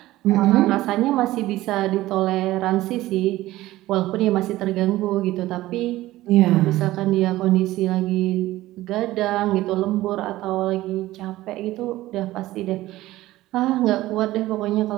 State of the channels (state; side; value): quieter; left; 16.5 dB